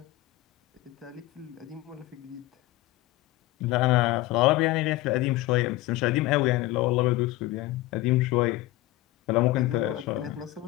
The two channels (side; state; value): right; quieter; 17.9 dB